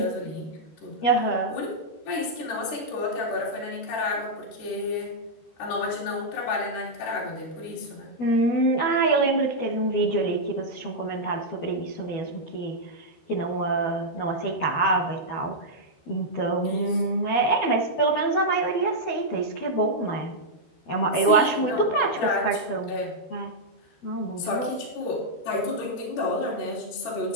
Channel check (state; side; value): late; right; 12 ms